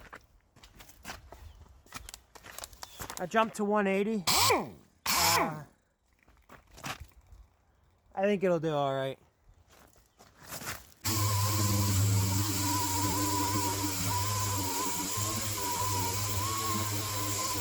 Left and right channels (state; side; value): identical; both; correlation 1.00